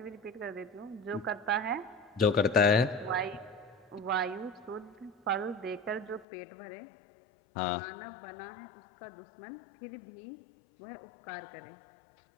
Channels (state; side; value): drops out; right; at 6.2 s